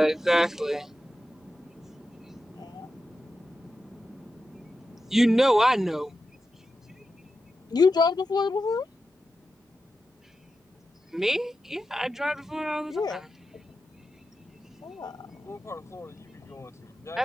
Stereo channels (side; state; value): both; normal; correlation 0.90